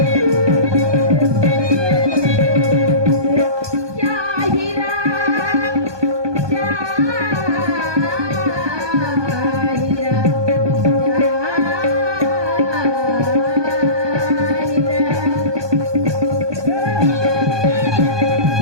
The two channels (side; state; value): left; late; 1.2 ms